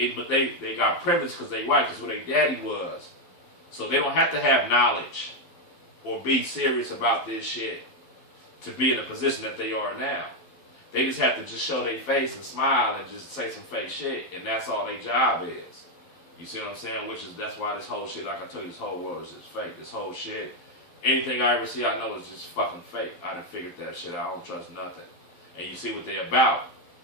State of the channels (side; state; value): right; late; 12 ms